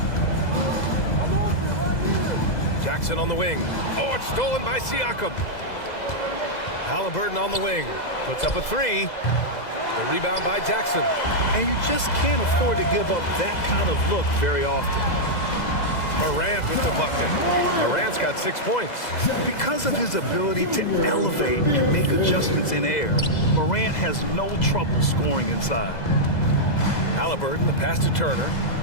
Jackson on the wing. Oh, it's stolen by Siakam. Halliburton on the wing. Puts up a 3. The rebound by Jackson. And you just can't afford to give up that kind of look very often. Morant with the bucket. Morant's got 6 points. Because of his ability to elevate and make adjustments in air, Morant has no trouble scoring inside. Halliburton, the pass to Turner.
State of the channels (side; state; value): right; late; 2.0 ms